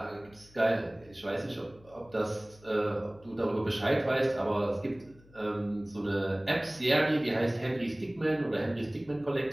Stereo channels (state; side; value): noise; left; hum, 26 dB below the sound